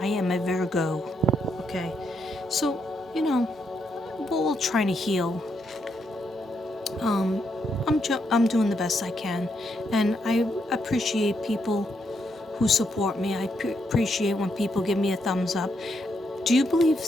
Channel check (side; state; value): both; normal; correlation 0.78